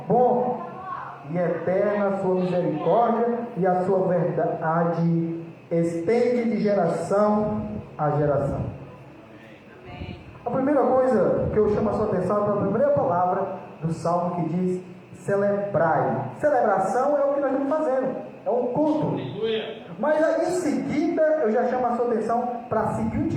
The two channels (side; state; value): both; identical; correlation 1.00